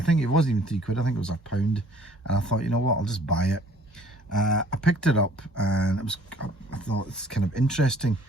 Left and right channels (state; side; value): normal; both; correlation 0.55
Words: it wasn't even £3, I think it was £1, and I thought, you know what, I'll just buy it. I picked it up, and I thought it's kind of interesting.